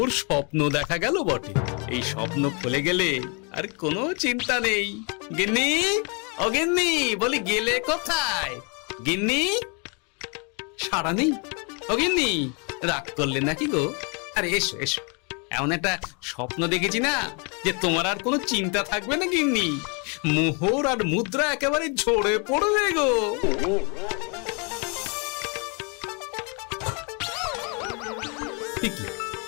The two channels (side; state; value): right; quieter; 34.4 dB